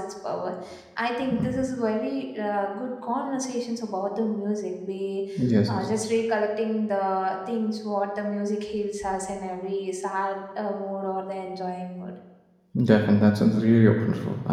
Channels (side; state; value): both; identical; correlation 1.00